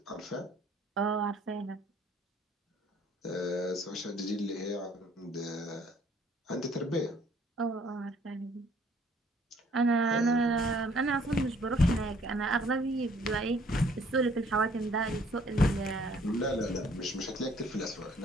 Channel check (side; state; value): both; normal; correlation 0.60